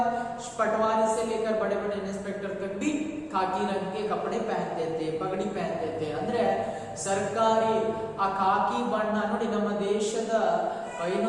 पटवारी से लेकर बड़े बड़े इंस्पेक्टर तक भी खाकी रंग के कपड़े पहनते थे, पगड़ी पहनते थे। ಅಂದ್ರೆ ಸರ್ಕಾರಿ ಆ ಖಾಕಿ ಬಣ್ಣ ನೋಡಿ, ನಮ್ಮ ದೇಶದ ಏನು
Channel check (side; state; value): both; identical; correlation 1.00